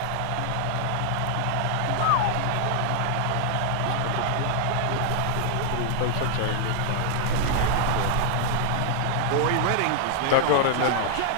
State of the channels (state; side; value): different; both; correlation 0.00